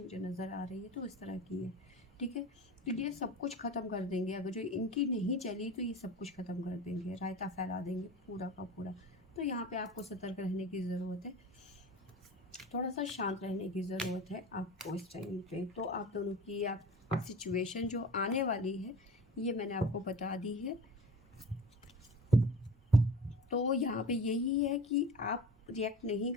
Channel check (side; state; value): both; normal; correlation 0.36